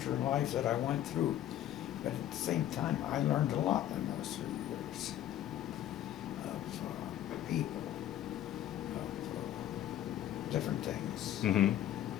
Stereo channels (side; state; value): right; quieter; 12.0 dB